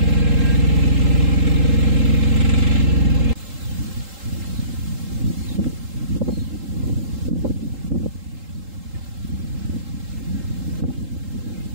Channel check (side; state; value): left; late; 3.8 ms